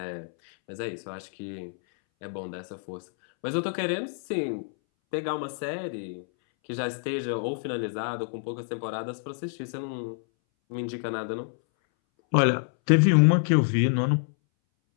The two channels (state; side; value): silent; right; 60 dB below the other